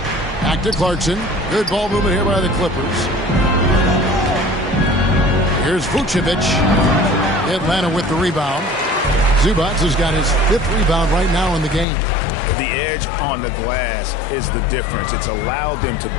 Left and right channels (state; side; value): drops out; right; at 11.9 s